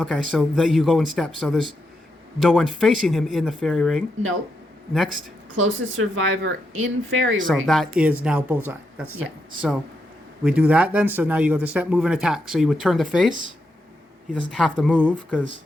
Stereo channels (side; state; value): both; normal; correlation 0.83